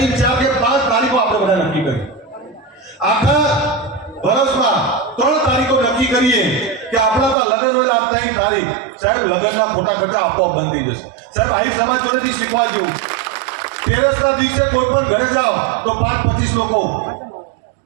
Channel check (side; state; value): left; drops out; at 7.4 s